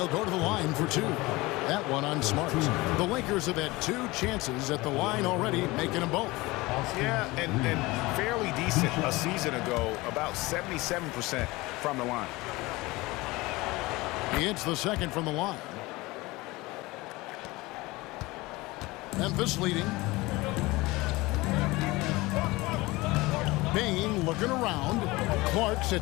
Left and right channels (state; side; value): quieter; right; 21.5 dB